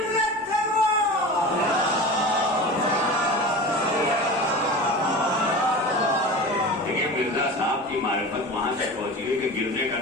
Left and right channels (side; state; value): both; normal; correlation 0.32